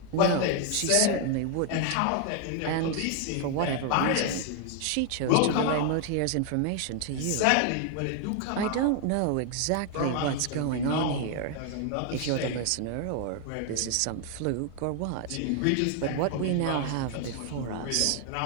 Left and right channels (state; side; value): different; both; correlation 0.00